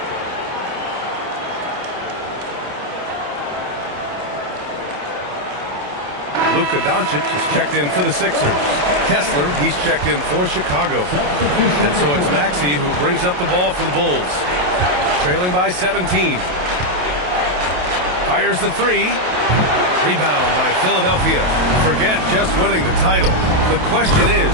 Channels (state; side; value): late; left; 28 ms